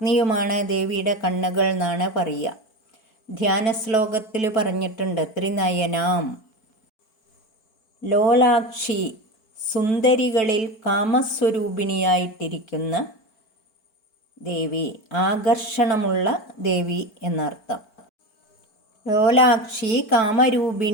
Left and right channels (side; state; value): right; late; 4.5 ms